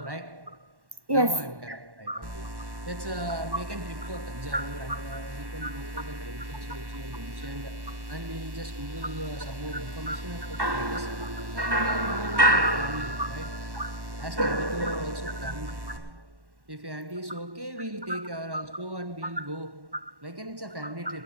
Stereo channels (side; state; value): left; late; 1.1 ms